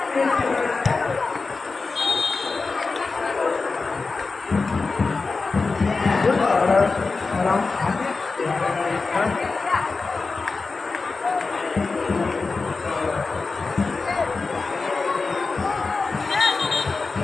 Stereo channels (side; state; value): right; quieter; 4.1 dB